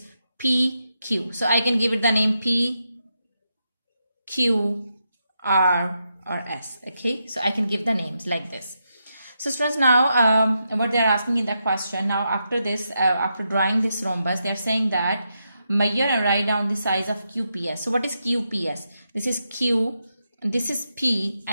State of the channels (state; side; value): inverted; both; correlation -0.84